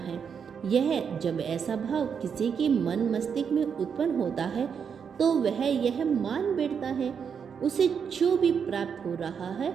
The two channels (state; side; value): quieter; left; 6.9 dB